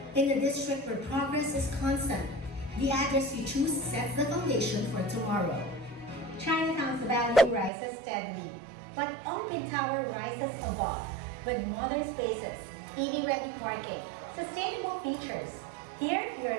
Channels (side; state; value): left; drops out; at 7.7 s